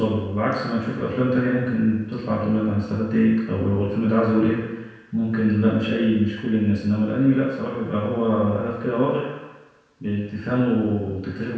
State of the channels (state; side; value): identical; both; correlation 1.00